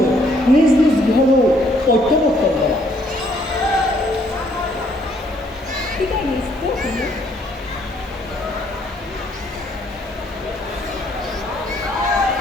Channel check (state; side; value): normal; both; correlation 0.66